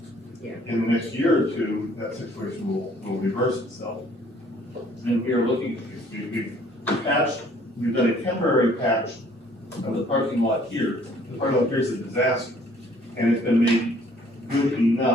Yeah. In the next year or two, that situation will reverse itself. And we are looking, we've patched, we've done a temporary patch of the parking lot here. The parking lot here is a disaster, and it's been made good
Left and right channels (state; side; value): normal; both; correlation 0.59